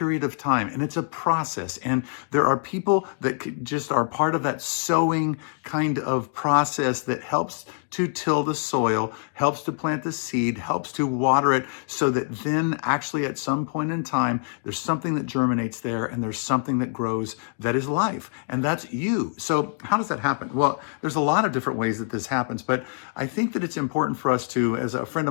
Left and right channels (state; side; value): silent; right; 62 dB below the other